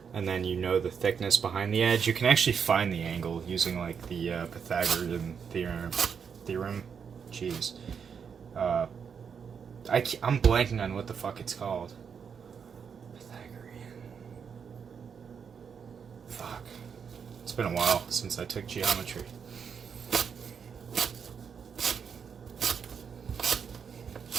and then you know the thickness behind the edge, you can actually find the angle using, like, the Pythagorean theorem. Jeez. I'm blanking on what the fuck it's called. Pythagorean. Fuck. It's been a while since I took geometry.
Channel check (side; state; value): left; quieter; 6.7 dB